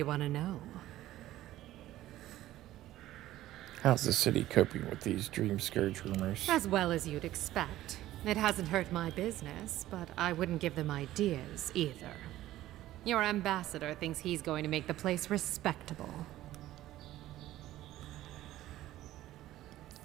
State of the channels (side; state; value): left; quieter; 14.7 dB